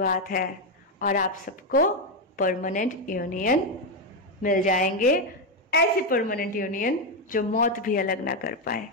है और आप सबको परमानेंट यूनियन मिल जाएंगे। ऐसी परमानेंट यूनियन जो मौत भी अलग ना कर पाए।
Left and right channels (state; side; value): normal; both; correlation 0.06